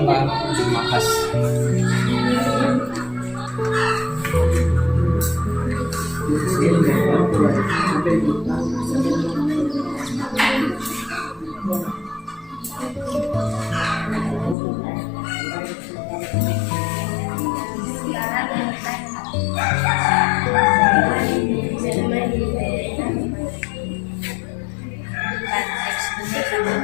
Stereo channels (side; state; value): right; drops out; at 14.6 s